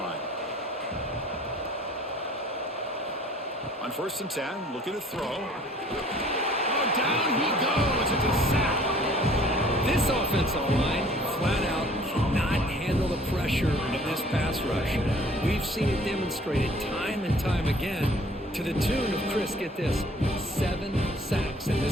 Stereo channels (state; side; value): normal; both; correlation 0.54